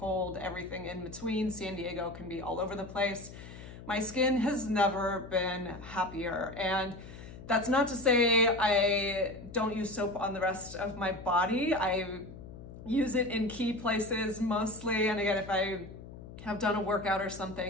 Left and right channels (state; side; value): noise; left; hum, 14 dB below the sound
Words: everything in between. San Diego can be all over the place. My skin has never been happier, and that's not to say I don't use soap on the rest of my body. I use it in key places mostly, and again, if I have done a workout or